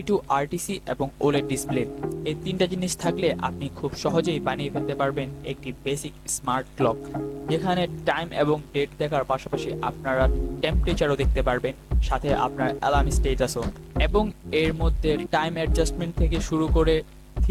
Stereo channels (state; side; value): identical; both; correlation 1.00